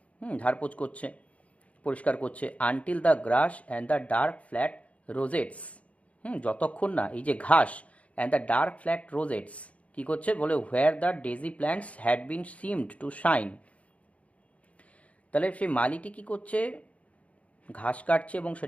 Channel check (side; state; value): right; late; 0.065 ms